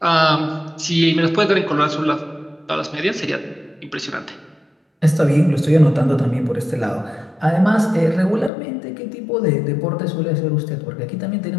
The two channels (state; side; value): drops out; right; at 8.5 s